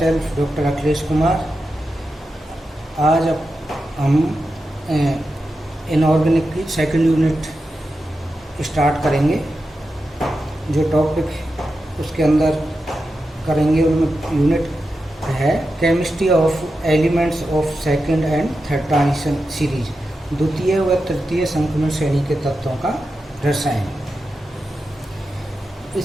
doctor Akhilesh Kumar. आज हम इनऑर्गेनिक की सेकंड यूनिट स्टार्ट करेंगे। जो टॉपिक उसके अंदर करेंगे उनमें यूनिट है chemistry of elements of second and third transition series, द्वितीय व तृतीय संक्रमण श्रेणी के तत्वों का रसायन।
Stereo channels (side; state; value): both; normal; correlation 0.90